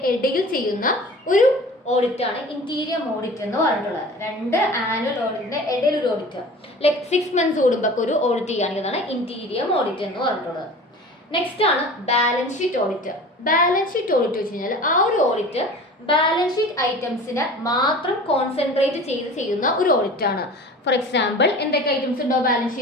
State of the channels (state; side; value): normal; both; correlation 0.40